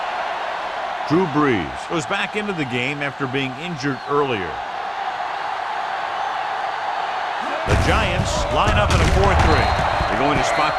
Drew Brees goes back into the game after being injured earlier. The Giants line up in a 4-3. They're going to spot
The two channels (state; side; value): identical; both; correlation 1.00